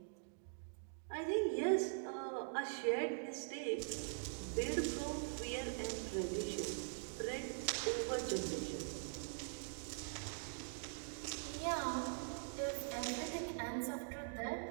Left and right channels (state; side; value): silent; left; digital silence